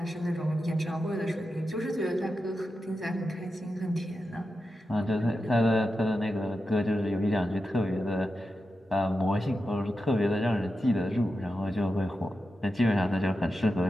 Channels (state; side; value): normal; both; correlation 0.90